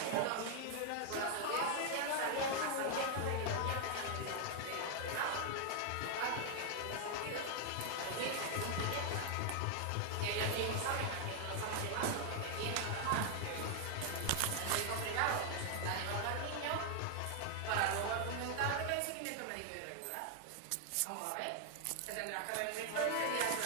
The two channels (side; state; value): both; different; correlation 0.00